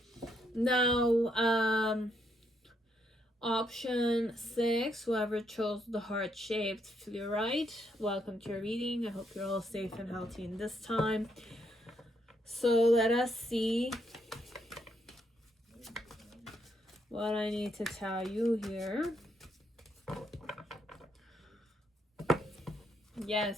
Now, option 6, whoever chose the heart-shaped fluorite, welcome to your reading. I hope you're all safe and healthy in this time. So let us see what I need to tell you here.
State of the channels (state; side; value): normal; both; correlation 0.75